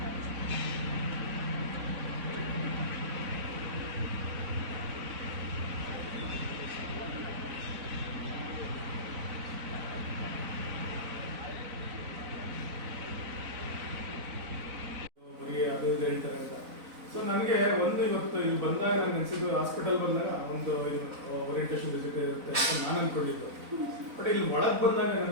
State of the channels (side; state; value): left; late; 4.0 ms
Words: ಅದು ಹೇಳ್ತಾರೆ ಅಂತ. ಸೊ ನನಗೆ ಒಂದು ಇವತ್ತು ಇಲ್ಲಿ ಬಂದಾಗ ನಾನು ಅನಿಸಿದ್ದು, ಹಾಸ್ಪಿಟಲ್ ಬಂದಾಗ ಒಂದು ಓರಿಯಂಟೇಷನ್ ವಿಸಿಟ್ ಇರುತ್ತೆ ಅಂತ ನಾನು ಅಂದ್ಕೊಂಡಿದ್ದು. ಬಟ್ ಇಲ್ಲಿ ಒಳಗೆ ಬಂದಾಗ